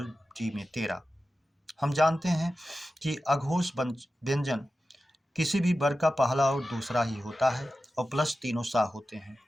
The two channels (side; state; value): both; normal; correlation 0.94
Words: डी में 13। हम जानते हैं कि अघोष व्यंजन किसी भी वर्ग का पहला और दूसरा ही होता है और प्लस तीनों सा होते हैं।